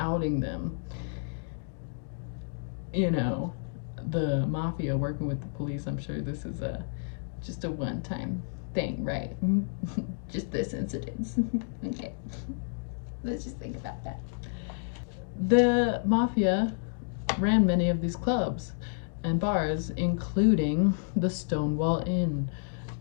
them. You know, the mafia working with the police, I'm sure this is just a one-time thing, right? Just this incident. Okay, let's just think about that. The mafia ran many of these clubs and bars, including the Stonewall Inn,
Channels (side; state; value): right; silent; digital silence